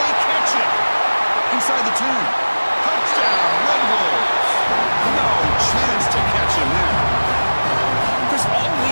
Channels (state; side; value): inverted; both; correlation -1.00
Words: catch it? Inside the 2. Touchdown, Red Wolves. No chance to catch him there. Chris, all